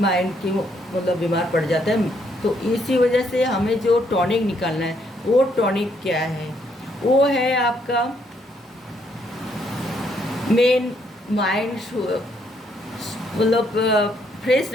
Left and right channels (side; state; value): both; normal; correlation 0.72